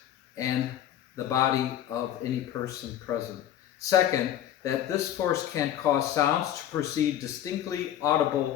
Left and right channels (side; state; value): right; quieter; 11.2 dB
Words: and the body of any person present. Second, that this force can cause sounds to proceed distinctly